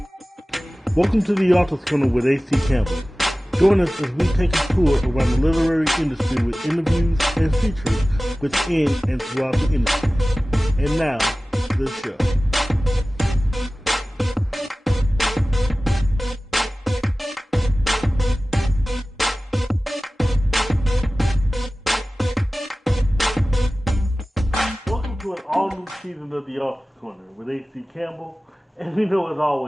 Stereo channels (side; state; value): both; normal; correlation 0.97